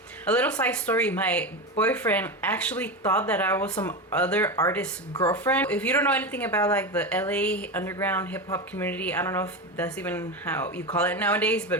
A little side story, my boyfriend actually thought that I was some other artist's girlfriend. If you don't know anything about like the LA underground hip-hop community, I don't know if that's even how you call it nowadays,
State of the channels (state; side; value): normal; both; correlation 0.19